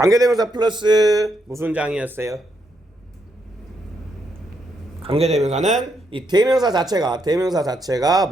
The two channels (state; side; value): normal; both; correlation 0.78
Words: 플러스 무슨 장이었어요? 관계대명사는 이 대명사 자체가